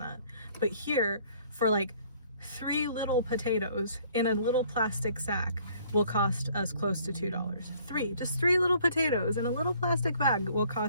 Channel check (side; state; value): both; inverted; correlation -0.59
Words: But here, for like 3 little potatoes in a little plastic sack will cost us close to $2. Just 3 little potatoes in a little plastic bag will